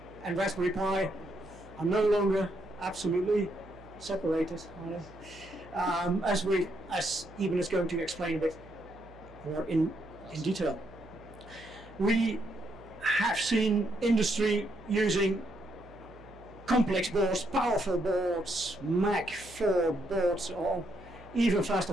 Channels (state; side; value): noise; right; hum, 21 dB below the sound